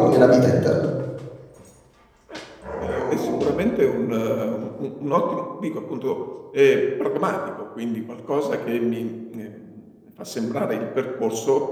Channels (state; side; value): identical; both; correlation 1.00